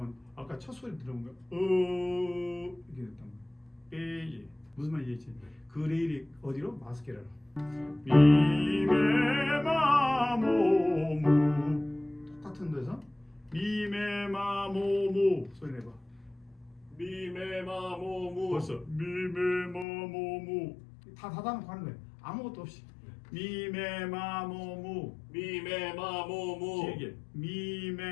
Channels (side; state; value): right; drops out; at 19.9 s